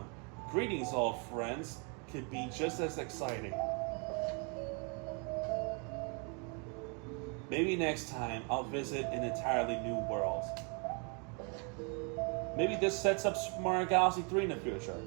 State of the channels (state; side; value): quieter; left; 36.0 dB